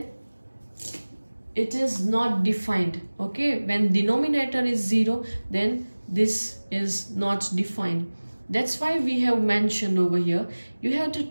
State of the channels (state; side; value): inverted; both; correlation -1.00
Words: it is not defined, okay. When denominator is 0, then this is not defined. That's why we have mentioned over here, you have to